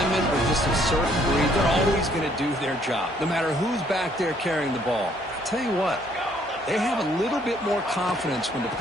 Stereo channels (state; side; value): normal; both; correlation 0.65